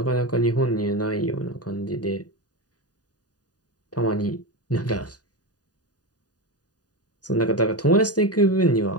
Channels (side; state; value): right; late; 0.68 ms